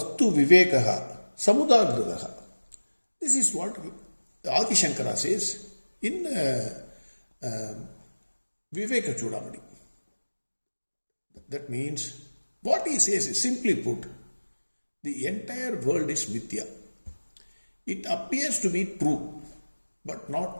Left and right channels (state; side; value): inverted; both; correlation -1.00